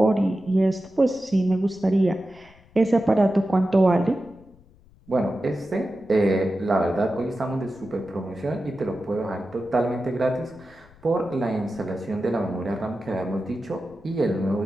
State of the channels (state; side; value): noise; left; rumble, 27 dB below the sound